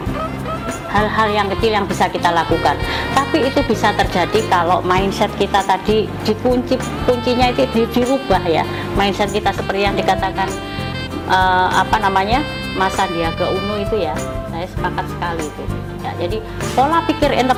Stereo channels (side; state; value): both; identical; correlation 1.00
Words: Hal-hal yang kecil yang bisa kita lakukan, tapi itu bisa terjadi kalau mindset kita tadi kuncinya itu dirubah, ya. Mindset kita seperti yang dikatakan Mas Sandiaga Uno itu, ya, saya sepakat sekali itu, ya. Jadi pola pikir